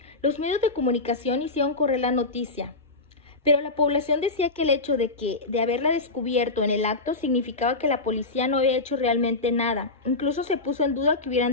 Los medios de comunicación hicieron correr la noticia, pero la población decía que el hecho de haberla descubierto en el acto significaba que la policía no había hecho realmente nada. Incluso se puso en duda que hubieran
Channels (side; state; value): right; quieter; 3.3 dB